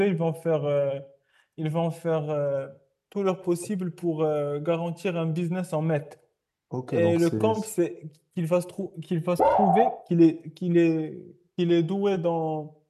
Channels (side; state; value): both; identical; correlation 1.00